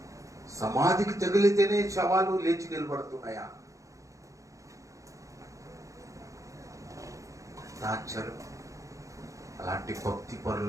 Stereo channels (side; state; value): left; late; 0.15 ms